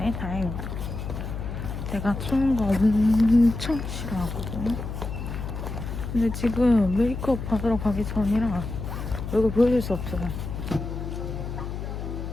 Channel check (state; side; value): noise; left; hum, 6 dB below the sound